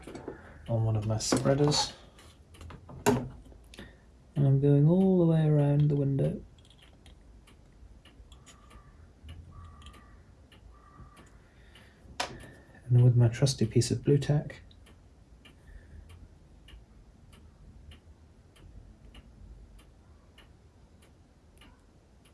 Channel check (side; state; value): both; identical; correlation 1.00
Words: on one of my spreaders, and I'm going all the way around the window. And then with my trusty piece of blue tack,